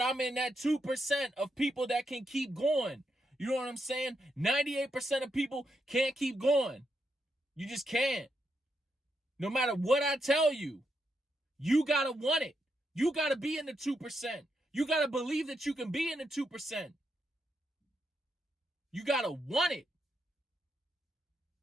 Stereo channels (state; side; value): normal; both; correlation 0.81